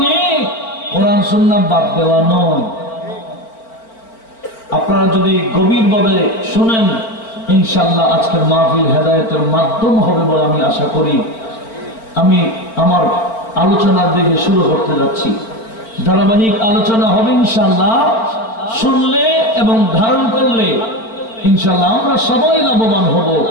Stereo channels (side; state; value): right; late; 4.4 ms